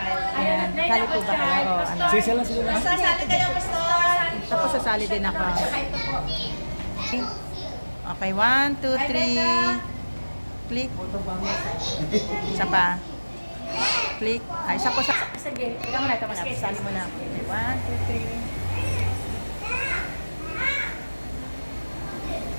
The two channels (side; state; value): both; inverted; correlation -1.00